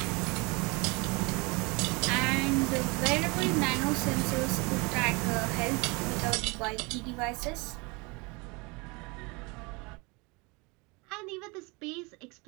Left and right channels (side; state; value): left; quieter; 27.7 dB